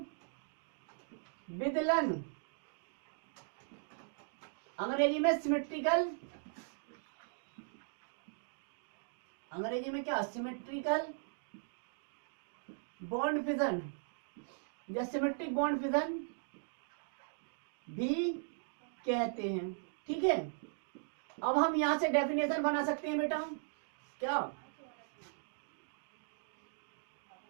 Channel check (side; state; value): left; silent; digital silence